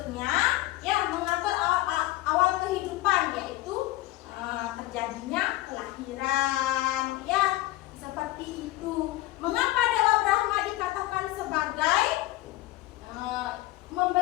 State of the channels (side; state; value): right; quieter; 17.1 dB